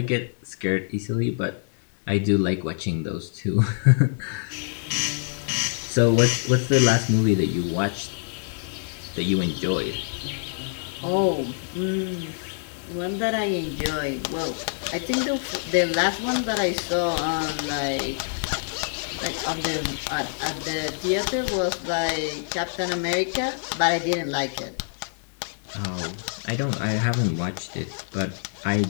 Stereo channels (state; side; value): silent; right; digital silence